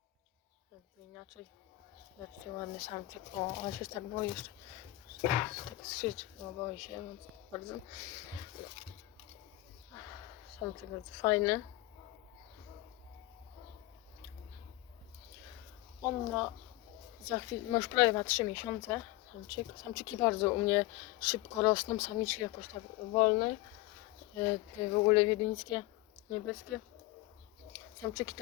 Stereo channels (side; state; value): right; quieter; 18.1 dB